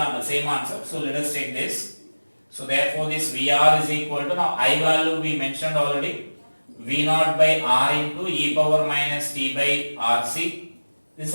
same answer. So let us take this. So therefore this VR is equal to, now I value we mentioned already, V naught by R into e power minus t by RC. This is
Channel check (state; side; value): inverted; both; correlation -1.00